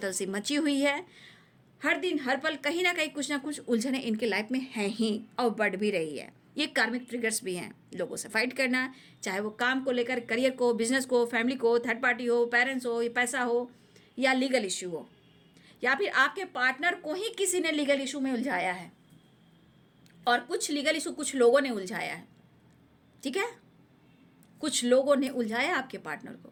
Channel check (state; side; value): identical; both; correlation 1.00